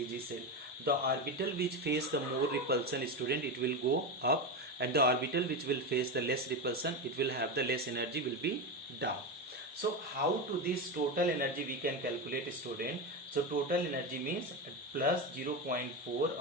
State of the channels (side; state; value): both; normal; correlation 0.16